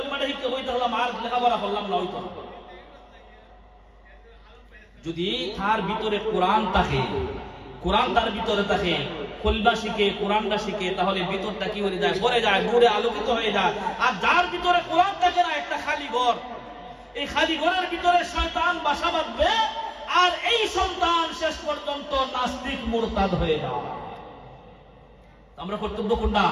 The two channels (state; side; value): identical; both; correlation 1.00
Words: শিক্ষা বই থাকলাম আর লেখাপড়া করলাম না, হইতো না। যদি তার ভিতরে কোরআন থাকে, কোরআন তার ভিতরে থাকে, কলমা শিখে কোরআনটা শিখে, তাহলে ভিতরটা কি হয়ে যায়? ভরে যায়, নূরে আলোকিত হয়ে যায়। আর যার ভিতরে কোরআন থাকে না, একটা খালি ঘর, এই খালি ঘরের ভিতরে শয়তান বাসা বাঁধবে, আর এই সন্তান শেষ পর্যন্ত নাস্তিক মুরতাদ হয়ে যায়। আমরা কর্তব্য কোনটা?